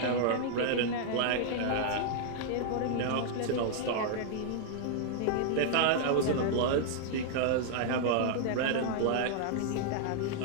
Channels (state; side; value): different; both; correlation -0.01